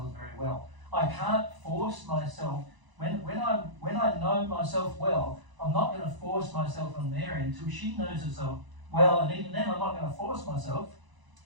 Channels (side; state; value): left; late; 1.0 ms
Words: very well. I can't force myself, when I know myself well, I'm not going to force myself on there until she knows herself well, and even then I'm not going to force myself